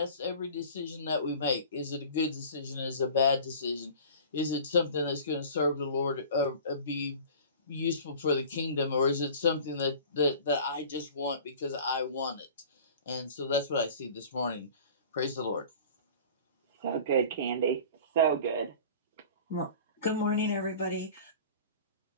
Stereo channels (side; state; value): both; inverted; correlation -0.42